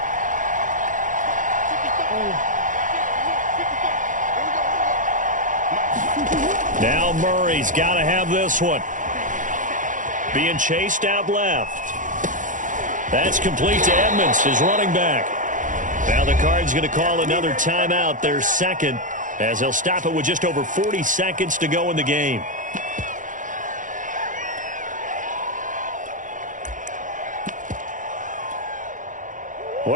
Now Murray's got to have this one. Being chased out left. That's complete to Edmonds, his running back. Now the Cards going to call another timeout, their second, as they'll stop it with just over 40 seconds to go in the game.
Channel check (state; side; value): late; left; 0.37 ms